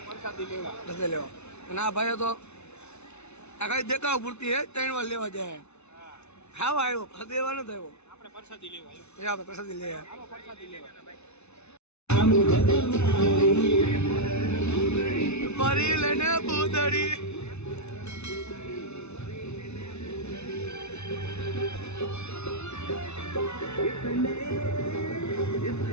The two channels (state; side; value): late; right; 0.81 ms